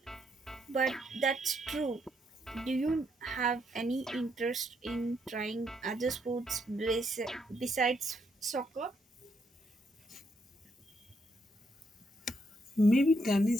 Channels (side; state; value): both; normal; correlation 0.76